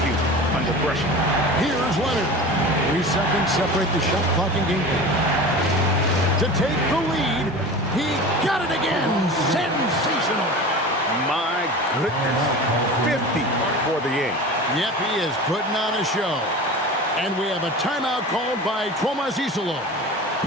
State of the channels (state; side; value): normal; both; correlation 0.34